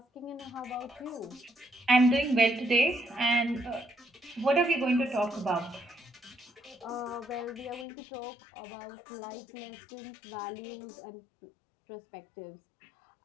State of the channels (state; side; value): drops out; right; at 7.9 s